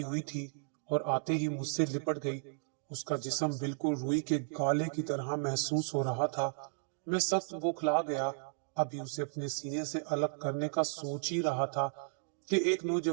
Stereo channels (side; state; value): left; silent; digital silence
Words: हुई थी और आते ही मुझसे लिपट गई। उसका जिस्म बिल्कुल रुई के गाले की तरह महसूस हो रहा था। मैं सख्त बौखला गया। अभी उसे अपने सीने से अलग करने का सोच ही रहा था कि एक